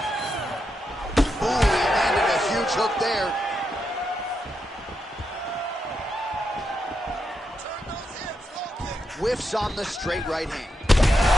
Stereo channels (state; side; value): normal; both; correlation 0.84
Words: Ooh, he landed a huge hook there. Whiffs on the straight right hand.